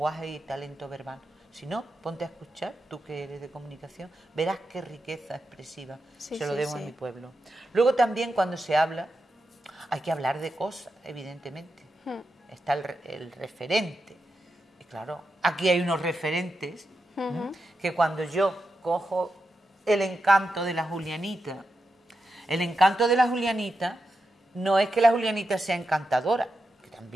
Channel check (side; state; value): both; normal; correlation 0.88